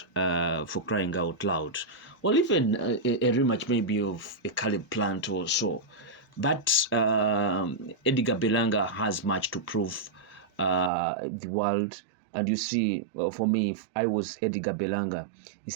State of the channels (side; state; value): left; drops out; at 10.9 s